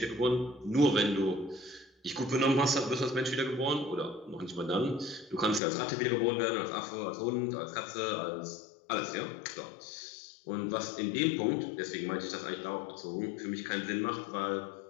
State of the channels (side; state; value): right; drops out; at 5.6 s